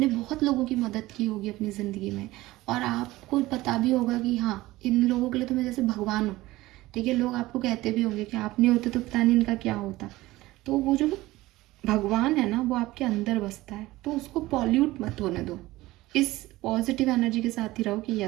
बहुत लोगों की मदद की होगी अपनी ज़िंदगी में, और आपको पता भी होगा कि हाँ, इन लोगों के लिए तो मैं जैसे भगवान हूँ, ठीक है। लोग आपको कहते भी होंगे कि आप नहीं होते तो पता नहीं इनका क्या होता। तो वो जो भगवान है ना, वो आपके अंदर बसता है, तो उसको पॉल्यूट मत होने दो। इस पॉजिटिव एनर्जी के साथ ही रहो कि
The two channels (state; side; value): quieter; left; 18.2 dB